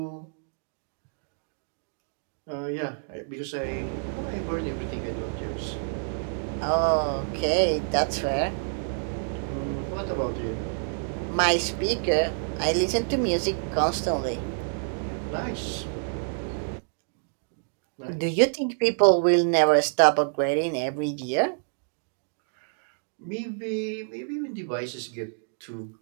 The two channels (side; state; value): left; silent; digital silence